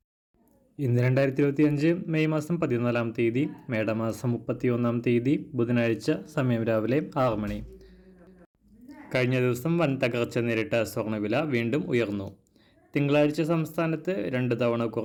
ഇന്ന് 2025 മെയ് മാസം 14-ാം തീയതി, മേടമാസം 31-ാം തീയതി, ബുധനാഴ്ച, സമയം രാവിലെ 6 മണി. കഴിഞ്ഞ ദിവസം വൻ തകർച്ച നേരിട്ട സ്വർണ്ണവില വീണ്ടും ഉയർന്നു. തിങ്കളാഴ്ച സംസ്ഥാനത്ത് 2 തവണ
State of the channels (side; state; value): both; identical; correlation 1.00